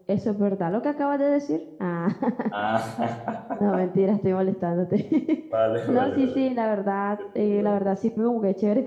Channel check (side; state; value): both; identical; correlation 1.00